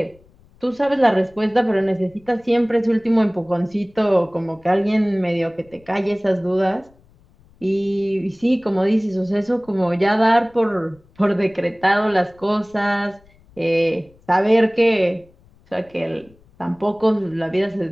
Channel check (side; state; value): left; noise; rumble, 30 dB below the sound